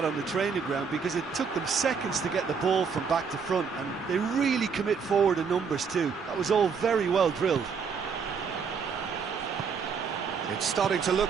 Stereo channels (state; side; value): quieter; left; 5.9 dB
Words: on the training ground because it took them seconds to get the ball from back to front, and they really commit forward in numbers too. That was all very well drilled. It's starting to